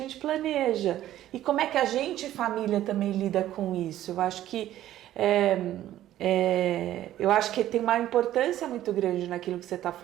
planeja. E como é que a gente, família, também lida com isso? Eu acho que tem uma importância muito grande naquilo que você está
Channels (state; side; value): quieter; left; 13.1 dB